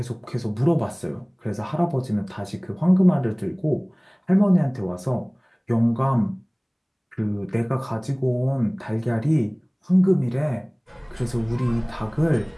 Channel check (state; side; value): identical; both; correlation 1.00